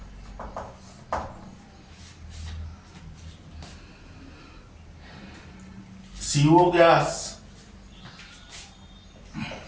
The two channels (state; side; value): identical; both; correlation 1.00